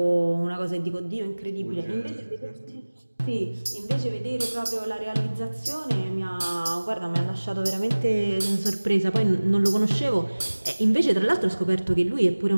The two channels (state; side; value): inverted; both; correlation -1.00